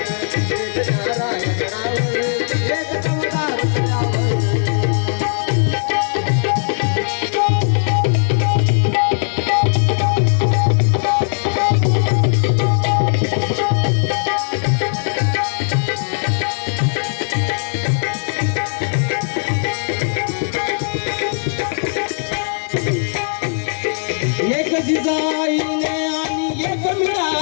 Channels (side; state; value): right; silent; 67 dB below the other